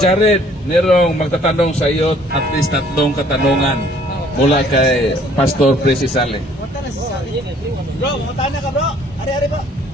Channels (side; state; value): both; normal; correlation 0.59